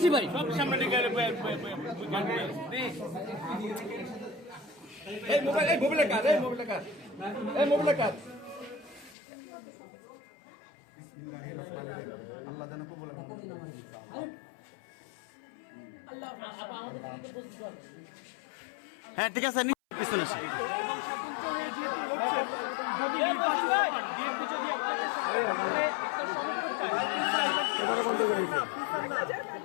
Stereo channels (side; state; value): right; drops out; at 9.2 s